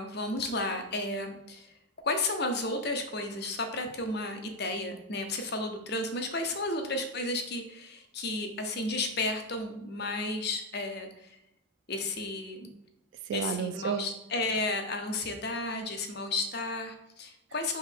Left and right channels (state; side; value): normal; both; correlation 0.05